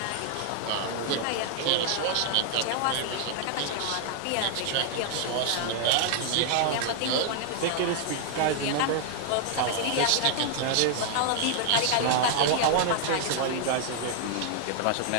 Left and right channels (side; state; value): both; different; correlation -0.01